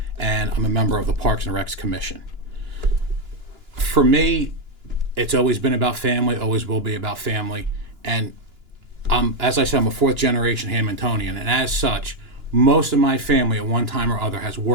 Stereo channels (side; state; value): left; late; 2.9 ms